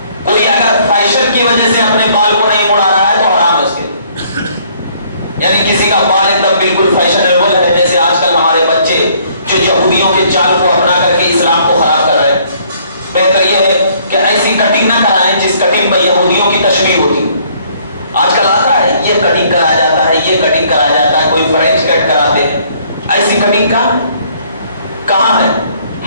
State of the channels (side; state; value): both; inverted; correlation -0.62